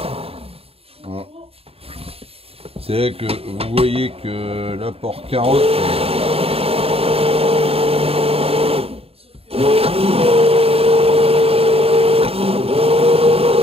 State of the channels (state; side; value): late; left; 0.28 ms